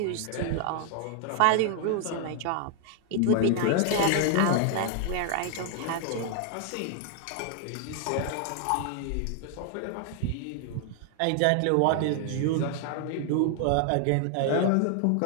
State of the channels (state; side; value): different; both; correlation 0.00